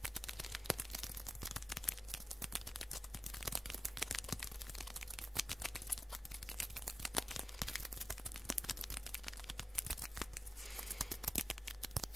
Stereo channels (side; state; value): both; normal; correlation 0.94